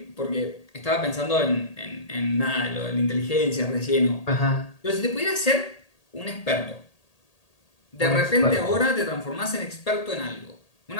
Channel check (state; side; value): late; right; 1.8 ms